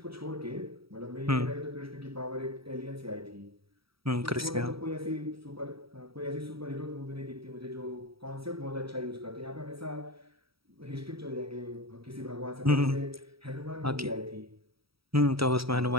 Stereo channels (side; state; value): left; late; 0.76 ms